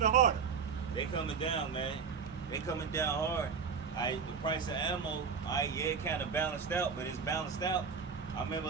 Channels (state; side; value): quieter; left; 5.9 dB